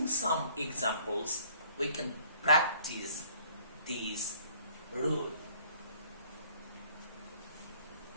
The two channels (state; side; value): inverted; both; correlation -0.57